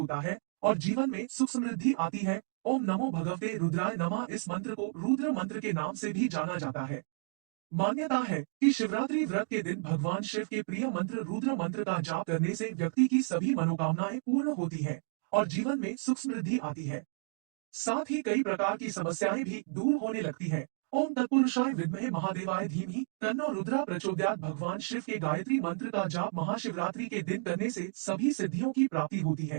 है और जीवन में सुख समृद्धि आती है। ओम नमो भगवते रुद्राय नमः इस मंत्र को रुद्र मंत्र के नाम से भी जाना जाता है। मान्यता है कि शिवरात्रि व्रत के दिन भगवान शिव के प्रिय मंत्र रुद्र मंत्र का जाप करने से व्यक्ति की सभी मनोकामनाएं पूर्ण होती है और जीवन में सुख समृद्धि आती है। साथ ही कई प्रकार की समस्याएं भी दूर होने लगती है। ओम तत्पुरुषाय विद्महे महादेवाय धीमहि तन्नो रुद्रा प्रचोदयात् भगवान शिव के गायत्री मंत्र का जाप महाशिवरात्रि के दिन करने से सभी सिद्धियों की प्राप्ति होती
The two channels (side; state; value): left; silent; digital silence